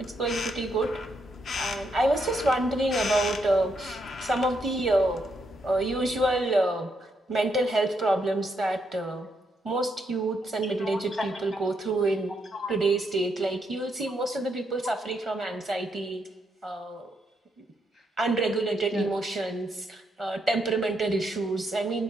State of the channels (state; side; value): normal; both; correlation 0.78